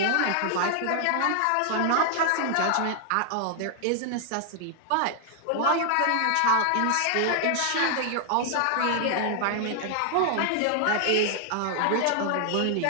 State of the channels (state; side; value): different; both; correlation -0.01